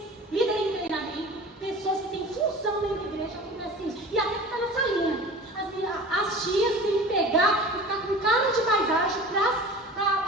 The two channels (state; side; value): normal; both; correlation 0.38